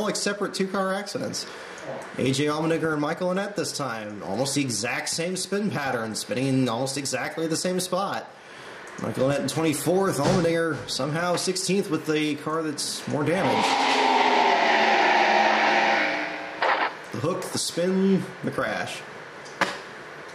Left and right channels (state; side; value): identical; both; correlation 1.00